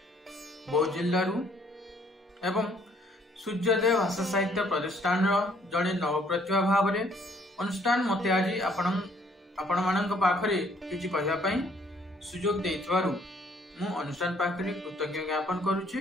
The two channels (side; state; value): both; normal; correlation 0.63